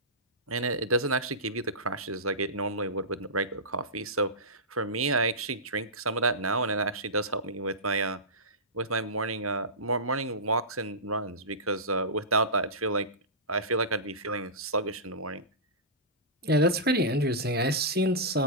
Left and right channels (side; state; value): both; normal; correlation -0.19